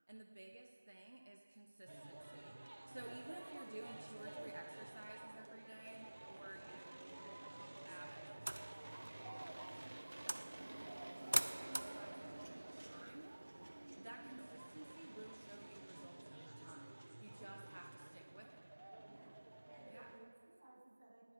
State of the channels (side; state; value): both; inverted; correlation -1.00